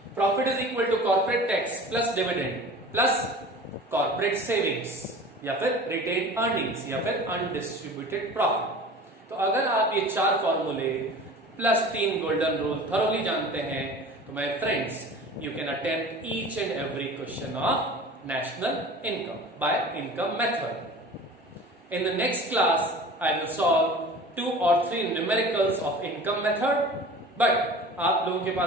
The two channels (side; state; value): both; normal; correlation 0.40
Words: profit is equal to corporate tax plus dividend plus corporate savings या फिर retained earnings या फिर undistributed profit। तो अगर आप ये चार फॉर्मूले प्लस 3 गोल्डन रूल थरोली जानते हैं, तो my friends you can attempt each and every question of national income by income method. In the next class I will solve 2 or 3 numericals of income method, but आप लोगों के